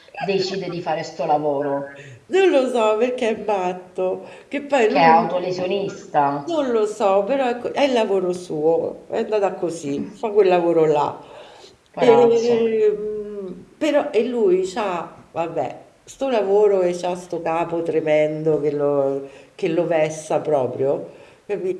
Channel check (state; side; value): identical; both; correlation 1.00